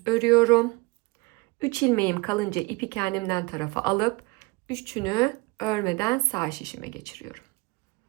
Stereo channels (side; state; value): left; quieter; 25.1 dB